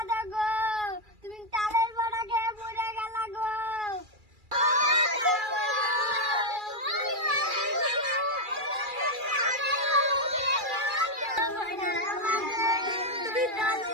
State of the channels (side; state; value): left; late; 2.4 ms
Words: গো, তুমি তালের বড়া খেয়ে মরে গেলা গো।